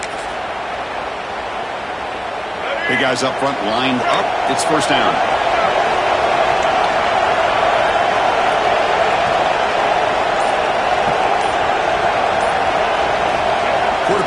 Big guys up front lined up. It's first down.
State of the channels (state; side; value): identical; both; correlation 1.00